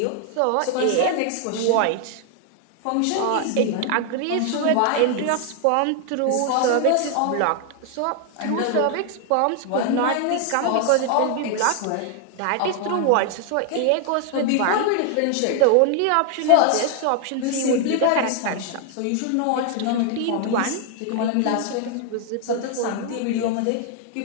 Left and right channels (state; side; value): different; both; correlation 0.00